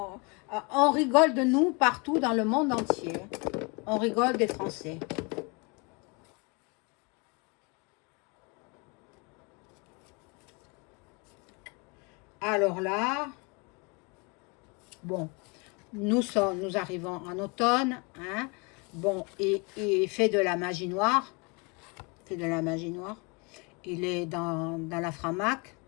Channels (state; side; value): quieter; right; 30.1 dB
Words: on rigole de nous partout dans le monde entier. On rigole des Français. Alors là, bon, nous arrivons en automne. Hein. Bon, il fait de la magie noire. Fait de la magie noire. Il est dans la Framac.